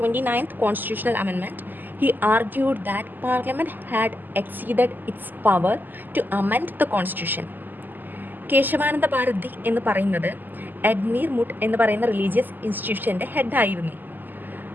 29th constitutional amendment. He argued that Parliament had exceeded its power to amend the constitution. Kesavananda Bharati എന്ന് പറയുന്നത് എഡ്മീർ മുട്ട് എന്ന് പറയുന്ന religious ഇൻസ്റ്റിറ്റ്യൂഷൻ്റെ ഹെഡായിരുന്നു.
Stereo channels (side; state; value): left; late; 0.088 ms